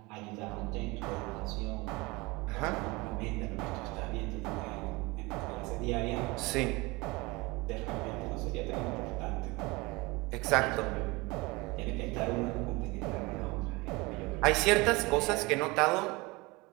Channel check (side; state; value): left; quieter; 24.1 dB